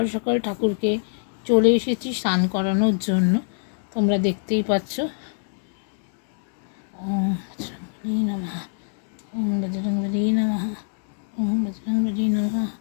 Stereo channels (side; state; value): right; silent; digital silence